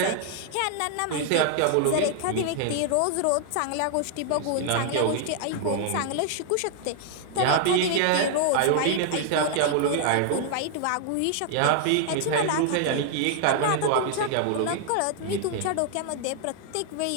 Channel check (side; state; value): both; different; correlation 0.00